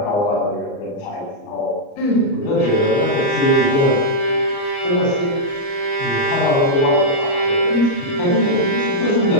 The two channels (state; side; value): late; right; 29 ms